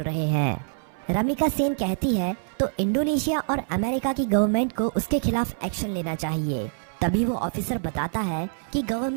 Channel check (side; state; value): left; silent; 58 dB below the other